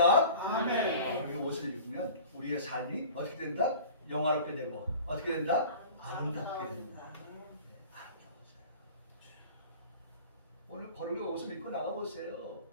아멘. 거룩의 옷을 입으면 우리의 삶이 어떻게 된다? 영화롭게 되고 어떻게 된다? 아름답게 된다. 오늘 거룩의 옷을 입고 나가보세요.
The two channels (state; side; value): inverted; both; correlation -0.42